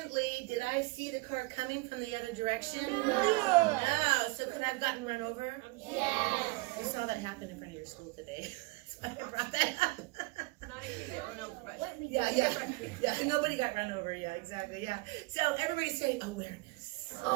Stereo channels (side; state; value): left; quieter; 24.2 dB